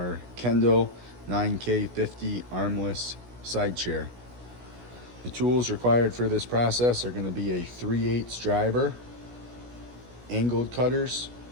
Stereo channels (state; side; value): late; left; 16 ms